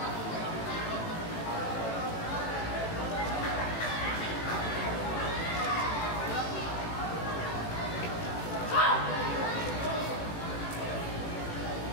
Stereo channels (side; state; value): right; late; 18 ms